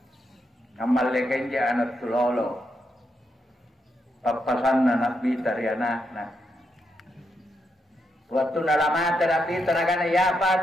amal lekenja anak tulolo papasan na nabi dari anakna. Waktu nalamat terapi tenaga ya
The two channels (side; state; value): both; normal; correlation 0.81